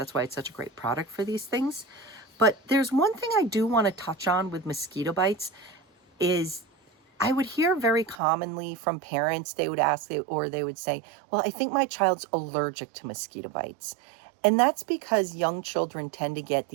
why it's such a great product for these things. But there's one thing I do want to touch on with mosquito bites is I would hear very commonly from parents, they would ask, or they would say, well, I think my child's allergic to mosquito bites. And that's because young children tend to get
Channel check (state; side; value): drops out; left; at 8.2 s